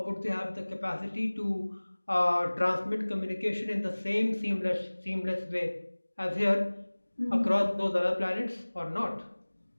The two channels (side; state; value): both; inverted; correlation -1.00